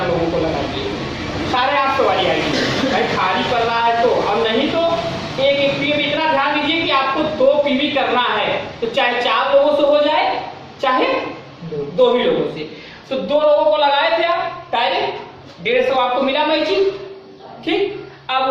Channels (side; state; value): both; identical; correlation 1.00